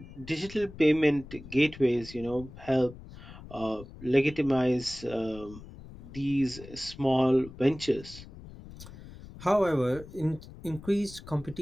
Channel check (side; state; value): left; noise; rumble, 16 dB below the sound